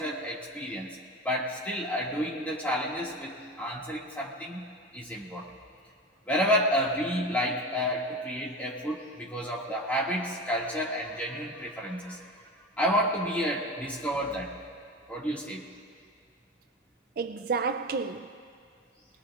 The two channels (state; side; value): normal; both; correlation 0.27